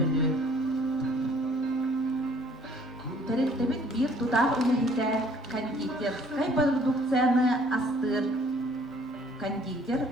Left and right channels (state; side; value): normal; both; correlation 0.57